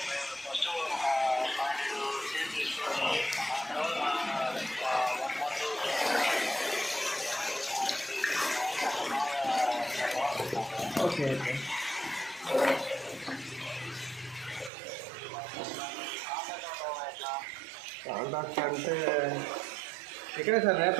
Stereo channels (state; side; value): drops out; left; at 14.7 s